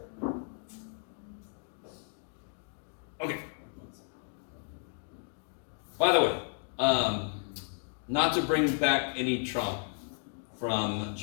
Okay. By the way, not to bring back any trauma from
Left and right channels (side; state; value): right; silent; 56 dB below the other